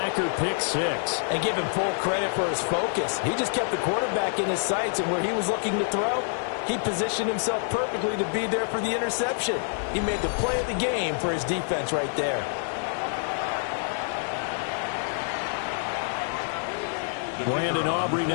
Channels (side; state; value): right; silent; digital silence